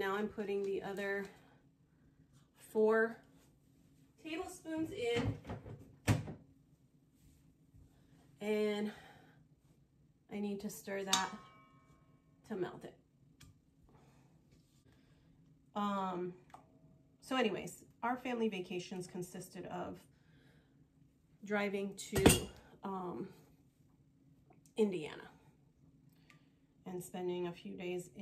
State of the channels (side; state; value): both; identical; correlation 1.00